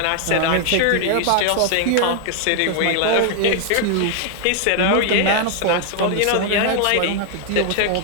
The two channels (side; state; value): both; different; correlation 0.00